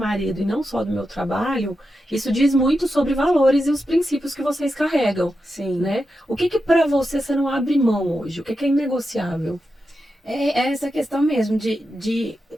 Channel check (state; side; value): normal; both; correlation 0.89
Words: e não só do meu trabalho, isso diz muito sobre valores e os princípios que vocês carregam. Sim. Né? O que para você não abre mão hoje? O que é inegociável? É essa questão mesmo de